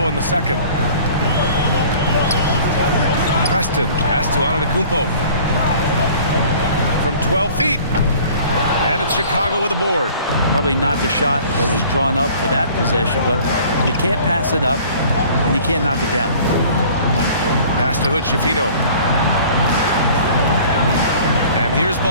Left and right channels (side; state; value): both; inverted; correlation -0.49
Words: in the second. Preston, pass to Antetokounmpo. from 12 feet. And it's Chicago with a board. Probably not the shot that was drawn up for that possession, but you can't pass it up, and you can't knock it down. Pass to Hood-Schifino. And here's